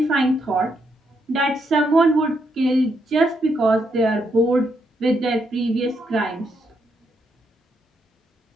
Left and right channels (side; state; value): both; normal; correlation 0.78